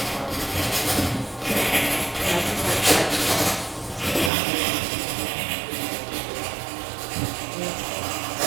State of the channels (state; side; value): drops out; left; at 4.3 s